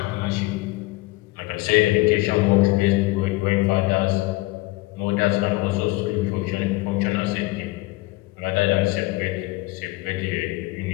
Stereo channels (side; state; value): right; quieter; 21.2 dB